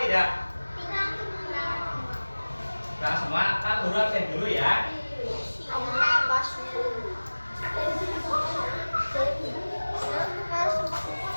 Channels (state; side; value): inverted; both; correlation -1.00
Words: tidak? Berangkat semua. Pak Guru absen dulu ya.